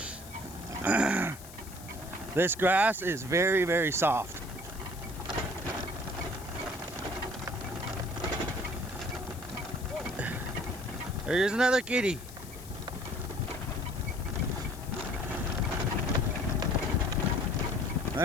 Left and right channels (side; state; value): left; noise; hiss, 17 dB below the sound